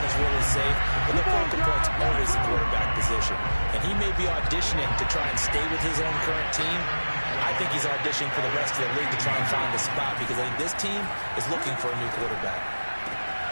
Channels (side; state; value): both; inverted; correlation -1.00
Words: is really safe, but the focal point's always the quarterback position. And he may be auditioning to try and stay with his own current team. I think he's auditioning for the rest of the league to try and find a spot, because I think this team is looking for a new quarterback.